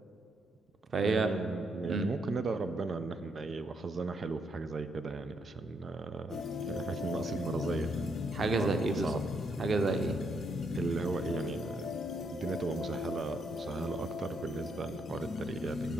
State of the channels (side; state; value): both; normal; correlation 0.76